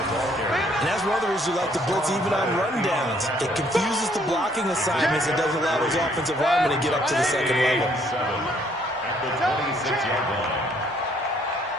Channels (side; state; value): both; normal; correlation 0.65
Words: that's one of the reasons we like to blitz even on rundowns. It confuses the blocking assignments. It doesn't allow those offensive linemen to get up to the second level. At the 26-yard line.